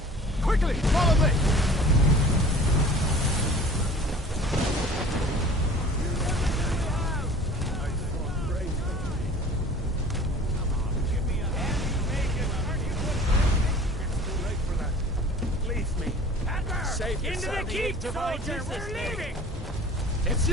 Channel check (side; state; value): both; normal; correlation 0.46